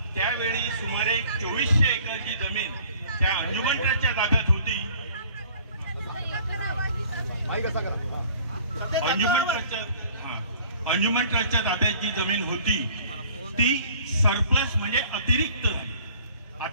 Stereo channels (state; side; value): inverted; both; correlation -0.53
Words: त्यावेळी सुमारे 2400 एकरची जमीन त्या अंजुमन ट्रस्टच्या ताब्यात होती। अंजुमन ट्रस्टच्या ताब्यात जी जमीन होती ती सरप्लस म्हणजे अतिरिक्त।